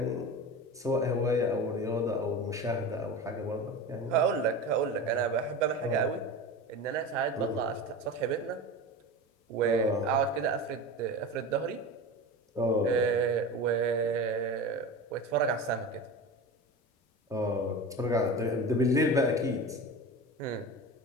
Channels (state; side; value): normal; both; correlation 0.29